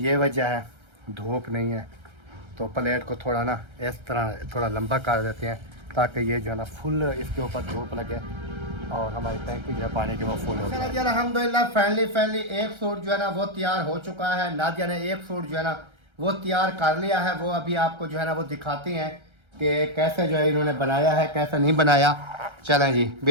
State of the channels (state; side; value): late; left; 1.3 ms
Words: वजह है, धूप नहीं है तो प्लेट को थोड़ा ना इस तरह थोड़ा लंबा कर देते हैं ताकि ये जो है ना फुल इसके ऊपर धूप लगे और हमारी टैंकी जो है पानी की वो फुल हो जाए। अल्हम्दुलिल्लाह फाइनली एक सूट जो है ना वो तैयार हो चुका है। नादिया ने एक सूट जो है ना वो तैयार कर लिया है, वो अभी आपको जो है ना वो दिखाती हैं कि कैसे जो है इन्होंने बनाया है, कैसे नहीं बनाया। चलें जी